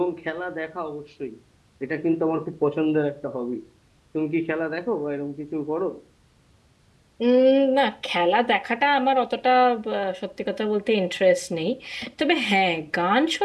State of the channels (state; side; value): identical; both; correlation 1.00